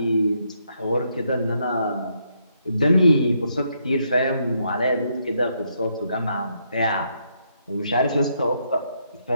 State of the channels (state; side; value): inverted; both; correlation -0.76